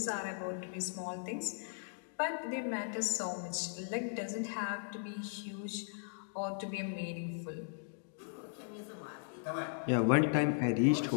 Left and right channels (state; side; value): silent; right; digital silence